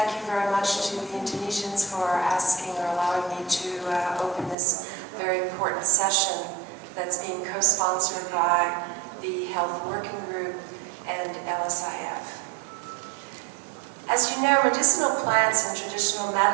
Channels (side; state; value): left; drops out; at 4.5 s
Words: you very much to the Indonesians for asking or allowing me to open this very important session that's being co-sponsored by the Health Working Group and LSIF. As you know, medicinal plants and traditional